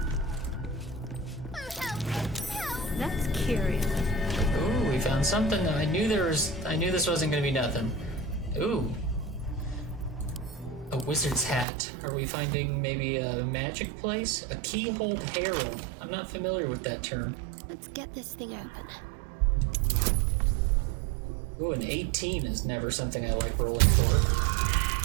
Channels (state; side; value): drops out; left; at 11.7 s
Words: Oh, help! Help! That's curious. Ooh, we found something. I knew this wasn't gonna be nothing. Ooh. A wizard's hat. Are we finding maybe a magic place? A keyhole herald. I'm not familiar with that term. Let's get this thing open. Ooh, an 18 is never something I like rolling for.